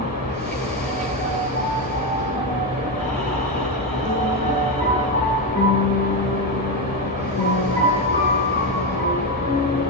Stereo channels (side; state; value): both; normal; correlation 0.11